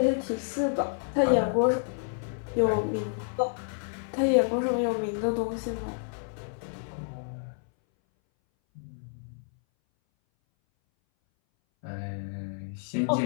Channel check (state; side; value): silent; right; 58 dB below the other